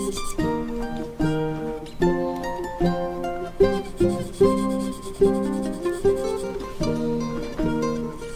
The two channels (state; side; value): identical; both; correlation 1.00